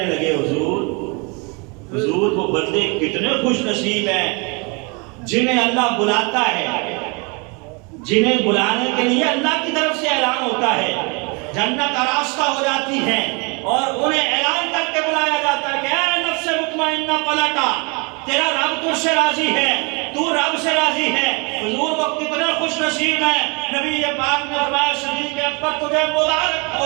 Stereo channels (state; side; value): quieter; left; 31.1 dB